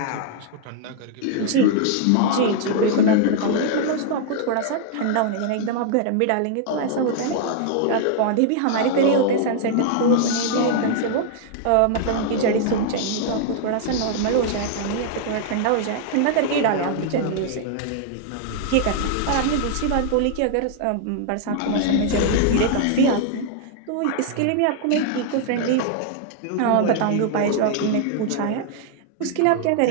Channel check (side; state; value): both; different; correlation -0.01